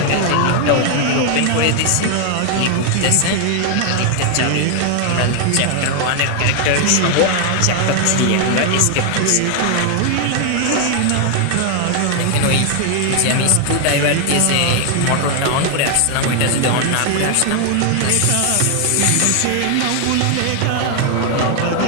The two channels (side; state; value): both; different; correlation 0.00